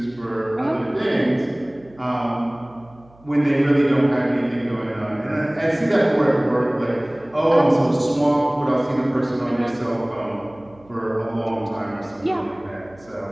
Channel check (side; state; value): right; noise; hum, 27 dB below the sound